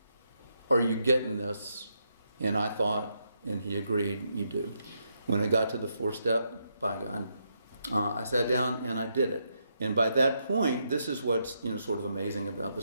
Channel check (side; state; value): both; inverted; correlation -0.80